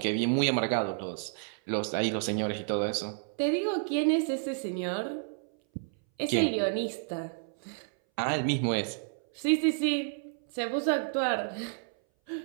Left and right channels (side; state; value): left; silent; 58 dB below the other